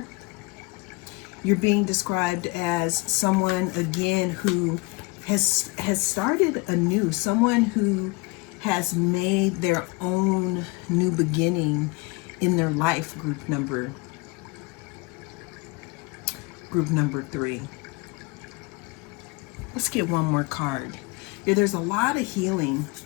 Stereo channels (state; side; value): quieter; right; 26.0 dB